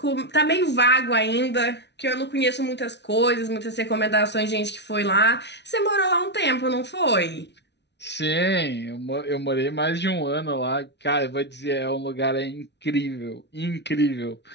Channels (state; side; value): late; right; 0.50 ms